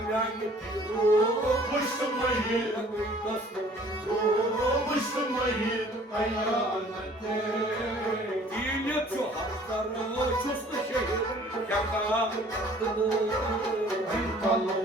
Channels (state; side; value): normal; both; correlation 0.54